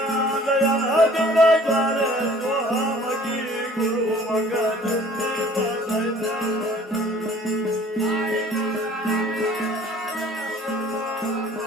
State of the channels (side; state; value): both; normal; correlation 0.52